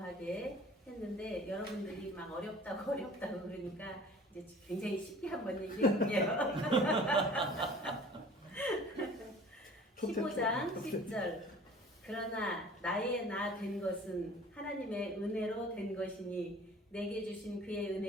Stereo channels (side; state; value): both; normal; correlation 0.46